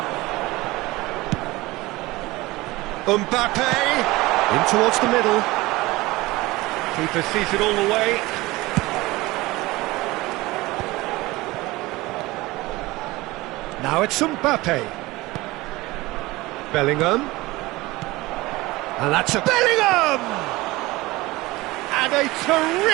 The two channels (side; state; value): left; quieter; 20.3 dB